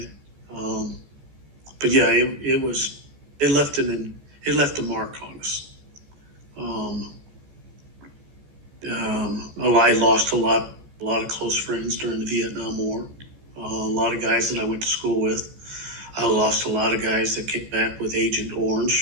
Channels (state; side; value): late; left; 14 ms